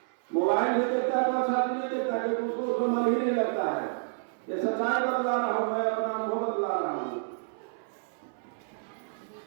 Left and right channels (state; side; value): silent; left; 58 dB below the other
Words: मोबाइल भी देखता है तो अच्छा चीज नहीं देखता है, क्योंकि उसको मन ही नहीं लगता है। ये सच्चाई बतला रहा हूं, मैं अपना अनुभव बतला रहा हूं।